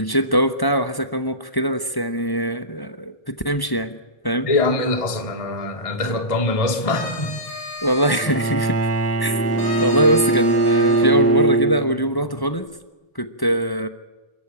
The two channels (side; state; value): right; late; 1.1 ms